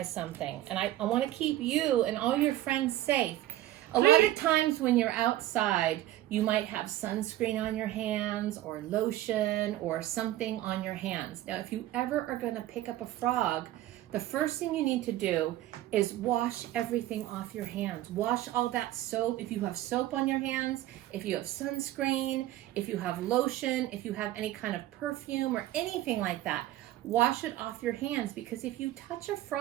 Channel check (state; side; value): quieter; left; 14.8 dB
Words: something, and I want to keep you and all your friends safe. A lot of times when you're outside, you might have sunscreen on your hands or lotion or something on your hands. Now, if you ever are going to pick up a frog, the first thing you need to do is wash everything off your hands. Wash all that soap. If you have soap on your hands, if you have sunscreen, if you have lotion, if you have any kind of perfume or anything like that, wash it off your hands, because if you touch a